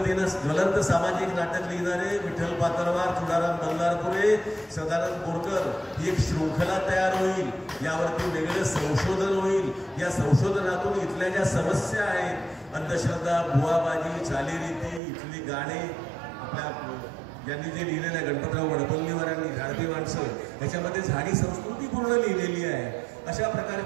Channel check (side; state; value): left; drops out; at 15.0 s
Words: ज्वलंत सामाजिक नाटक लिहिणारे विठ्ठल पातळवार, तुळाराम बल्लारपुरे, सदानंद बोरकर ही एक शृंखला तयार होईल. यावरती वेगळं संशोधन होईल. या संशोधनातून इथल्या ज्या समस्या आहेत, अंधश्रद्धा, बुवाबाजी, चालीरीती, इथली गाणे, आपल्या ज्यांनी जे लिहिलेलं आहे गणपतराव वडपल्लीवारांनी झाडती माणसं, याच्यामध्ये झाडी संस्कृती पूर्ण लिहिलेली आहे. अशा